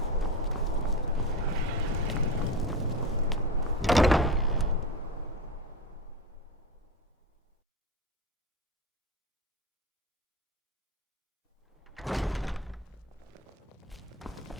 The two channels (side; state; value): both; normal; correlation 0.23